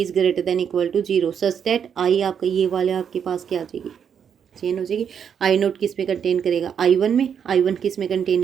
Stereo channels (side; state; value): left; quieter; 7.8 dB